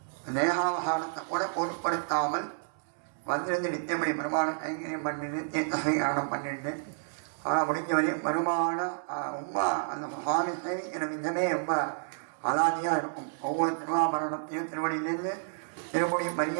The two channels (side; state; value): left; silent; digital silence